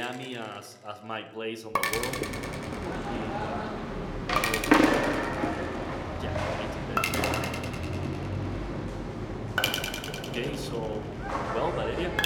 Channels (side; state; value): both; identical; correlation 1.00